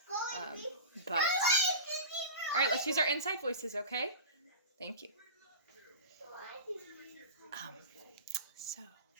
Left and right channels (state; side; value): inverted; both; correlation -0.31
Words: But all right, let's use our inside voices, okay? Thank you. So